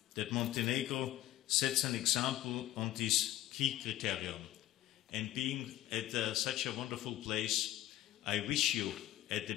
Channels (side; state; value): right; quieter; 14.5 dB